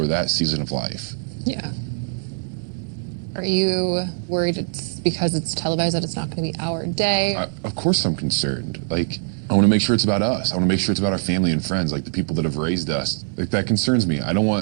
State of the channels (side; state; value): left; silent; 63 dB below the other